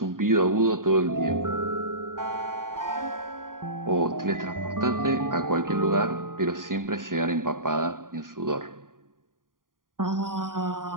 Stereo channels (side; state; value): left; late; 0.90 ms